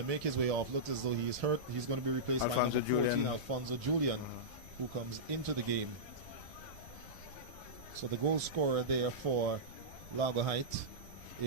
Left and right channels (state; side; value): noise; right; rumble, 20 dB below the sound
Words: make his way off. Looks as though he is hurt. He's going to be replaced by number 14, Alfonso Julian, who comes into the game. So the goal scorer there for Largo Height